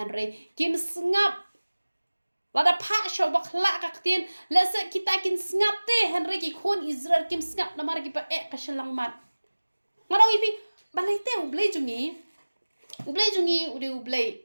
kim snap lada pha shaw bakla kaktin lesa kita kin snap te henry ki khon Israel kim snap namar ki pa ka shalang mat ngarong ipi balai te u blei jungi u de u blei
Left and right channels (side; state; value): both; inverted; correlation -1.00